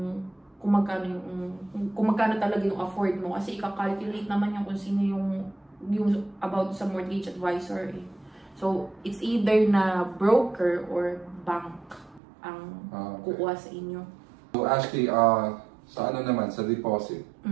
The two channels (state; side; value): drops out; left; at 12.2 s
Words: kung magkano talaga yung afford mo. Kasi ika-calculate naman yung kung sino yung about sa mortgage advisor. So, it's either na broker or bank ang kukuha sa inyo. So Ashley, sa ano naman, sa deposit?